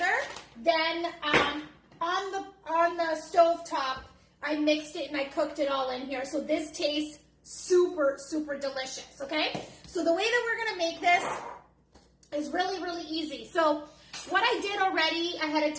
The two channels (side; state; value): both; identical; correlation 1.00